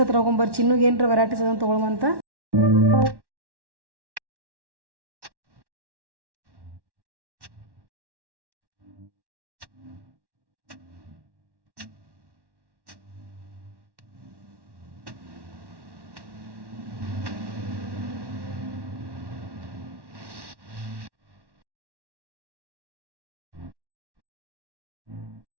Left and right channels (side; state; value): left; late; 1.1 ms